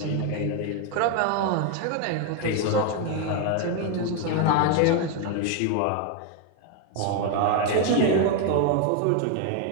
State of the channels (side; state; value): both; different; correlation 0.01